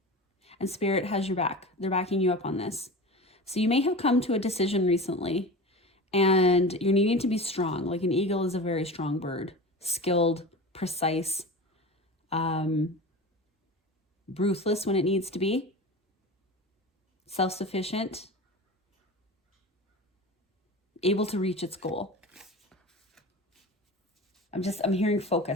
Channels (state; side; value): normal; both; correlation 0.32